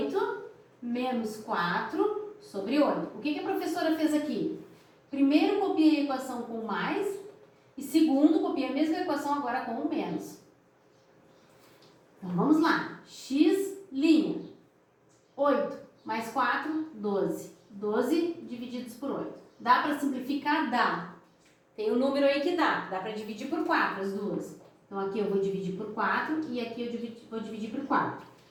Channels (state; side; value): identical; both; correlation 1.00